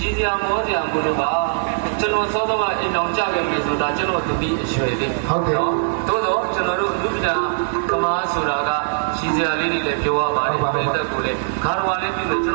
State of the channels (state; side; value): silent; left; digital silence